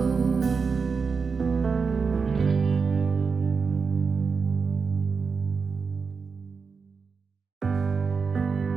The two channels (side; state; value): left; quieter; 5.2 dB